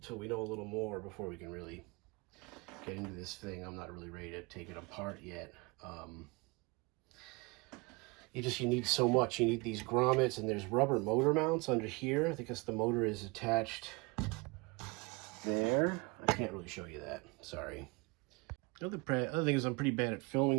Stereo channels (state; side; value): quieter; left; 27.4 dB